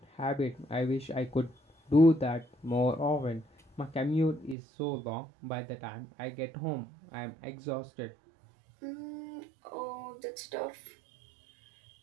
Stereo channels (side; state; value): left; drops out; at 4.5 s